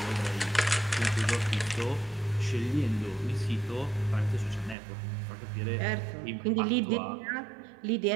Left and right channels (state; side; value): drops out; left; at 4.8 s